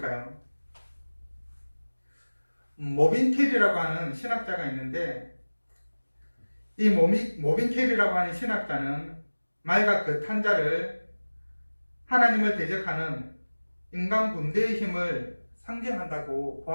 모빈 캐리라고 하는 신학자가 있는데, 이 모빈 캐리라고 하는 신학자는 말과 그 탄자를 하나님을 대적하는 인간 군대의 힘을 상징한다고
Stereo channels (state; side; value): inverted; both; correlation -1.00